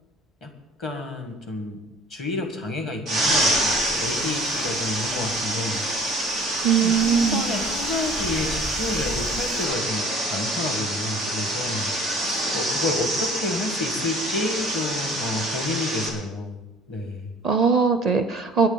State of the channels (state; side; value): normal; both; correlation 0.49